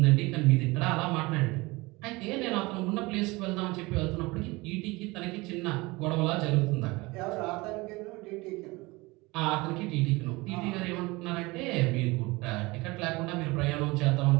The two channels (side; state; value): left; quieter; 23.0 dB